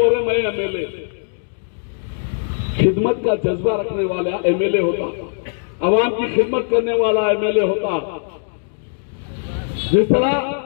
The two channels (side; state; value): right; silent; digital silence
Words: रहे मैं एमएलए। खिदमत का जज्बा रखने वाला एमएलए होता, अवाम की खिदमत करने वाला एमएलए होता। जिस तरह